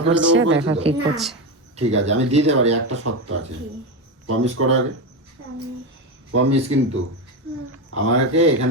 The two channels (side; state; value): both; normal; correlation 0.15